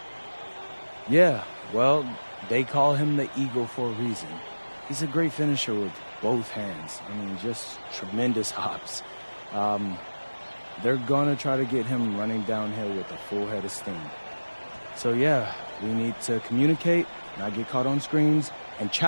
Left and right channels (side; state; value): both; inverted; correlation -1.00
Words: Yeah, well, they call him the Eagle for a reason. He's a great finisher with both hands. I mean, just tremendous hops. They're gonna try to get him running downhill with a full head of steam. So yeah, we need to communicate, not get caught on screens, and